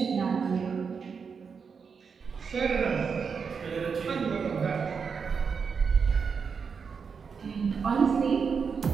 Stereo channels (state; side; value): quieter; left; 5.9 dB